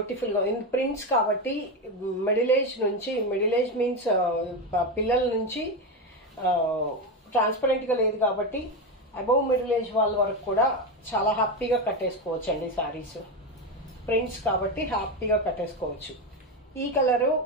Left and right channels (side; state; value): both; normal; correlation 0.14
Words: ప్రింట్స్ కాబట్టి మిడిల్ ఏజ్ నుంచి, మిడిల్ ఏజ్ మీన్స్ పిల్లల నుంచి ట్రాన్స్పరెంట్గా లేదు కాబట్టి అబౌవ్ మిడిల్ ఏజ్ వాళ్ళ వరకు కూడా చాలా హ్యాపీగా కట్టేసుకోవచ్చు అండి. శారీస్ ప్రింట్స్ కాబట్టి హ్యాపీగా కట్టేసుకోవచ్చు. ఈ కలరు